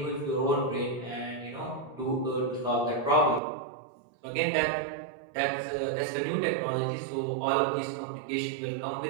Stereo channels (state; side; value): drops out; left; at 3.4 s